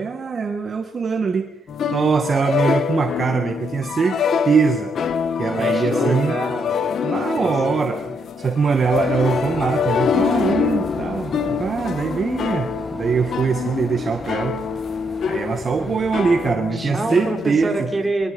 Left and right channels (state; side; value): normal; both; correlation 0.76